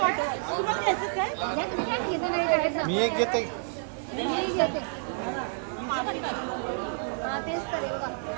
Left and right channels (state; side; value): silent; left; 58 dB below the other